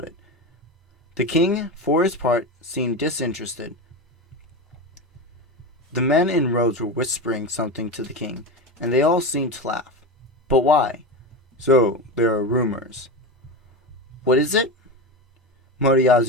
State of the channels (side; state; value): both; normal; correlation 0.21